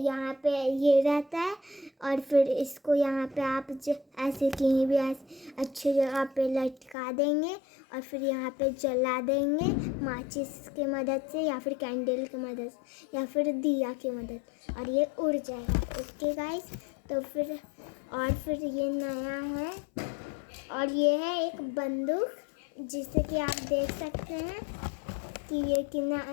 पे ये रहता है और फिर इसको यहाँ पे आप ऐसे कहीं भी ऐसे अच्छी जगह पे लटका देंगे और फिर यहाँ पे जला देंगे माचिस की मदद से या फिर कैंडल की मदद से या फिर दिया की मदद, और ये उड़ जाएगा। ओके गाइस, तो फिर ये नया है और ये है एक बंदूक, जिसे कि आप देख सकते हैं कि ये कितना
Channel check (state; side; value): drops out; right; at 7.0 s